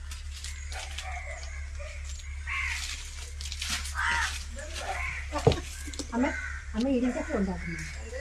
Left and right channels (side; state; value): both; identical; correlation 1.00